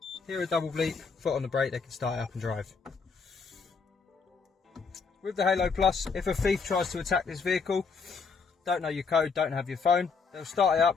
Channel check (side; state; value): right; quieter; 5.2 dB